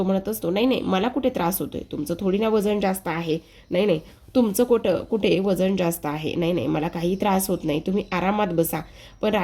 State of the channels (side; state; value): both; identical; correlation 1.00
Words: म्हणत असतो, नाही नाही मला कुठे त्रास होतोय, तुमचं थोडी ना वजन जास्त आहे, नाही नाही तुमचं कुठे वजन जास्त आहे, नाही नाही मला काही त्रास होत नाही, तुम्ही आरामात बसा. पण